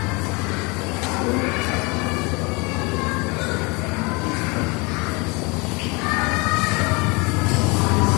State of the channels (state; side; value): quieter; right; 28.2 dB